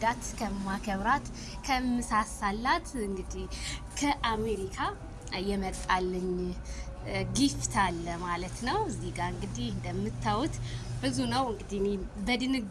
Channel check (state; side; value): identical; both; correlation 1.00